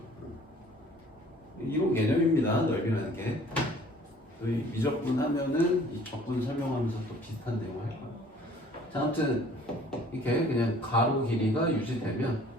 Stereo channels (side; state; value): both; normal; correlation 0.53